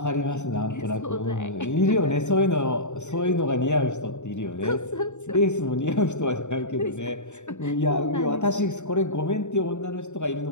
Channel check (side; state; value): right; late; 0.84 ms